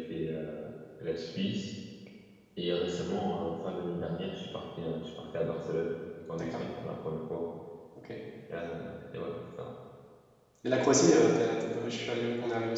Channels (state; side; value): identical; both; correlation 1.00